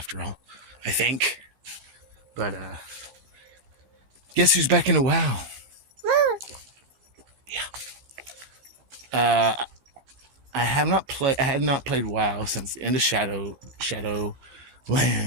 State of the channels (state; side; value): late; left; 16 ms